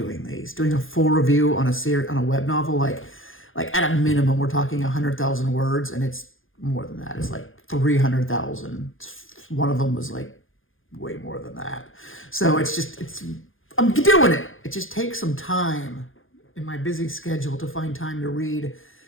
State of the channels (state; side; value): late; right; 0.59 ms